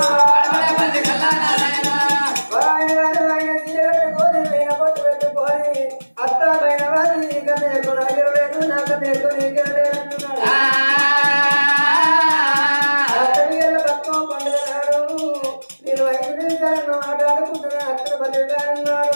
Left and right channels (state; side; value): inverted; both; correlation -1.00